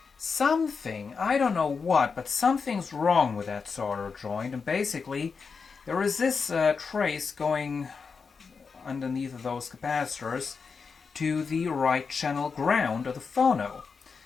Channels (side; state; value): right; quieter; 5.3 dB